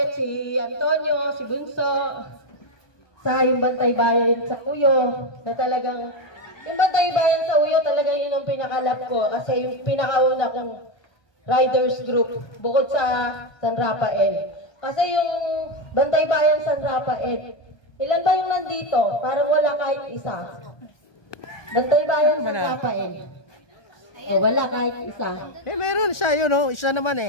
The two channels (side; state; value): right; late; 1.2 ms